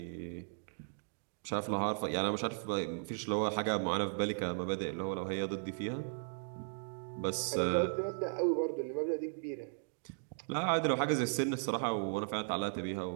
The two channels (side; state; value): left; silent; digital silence